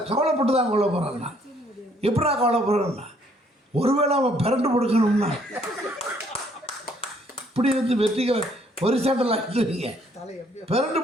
கவலைப்பட்டு தான் கவலைப்படுறேன்னா. எப்படா கவலைப்படுறேன்னா, ஒருவேளை அவன் பிறண்டு கொடுக்கணும்னா இப்படி வெற்றிக்க ஒரு சாண்டல் ஆகிடுவீங்க. பிறண்டு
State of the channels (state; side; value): normal; both; correlation 0.65